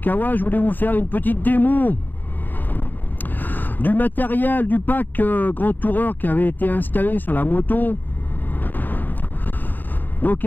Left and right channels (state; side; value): late; right; 0.089 ms